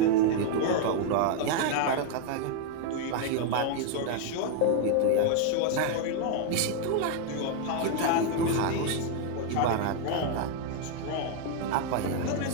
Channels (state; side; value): different; both; correlation 0.00